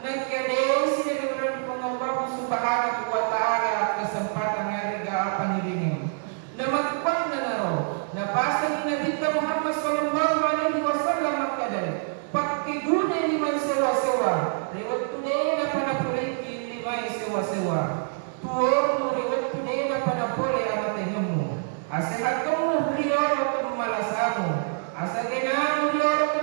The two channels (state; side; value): silent; left; 61 dB below the other